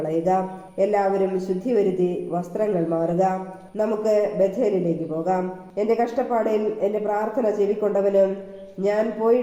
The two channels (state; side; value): identical; both; correlation 1.00